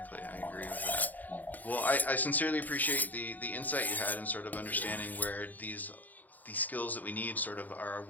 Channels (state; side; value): late; right; 0.083 ms